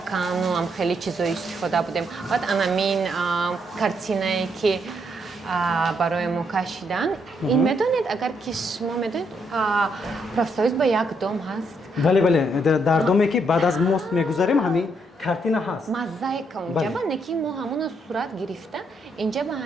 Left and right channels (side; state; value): both; normal; correlation 0.75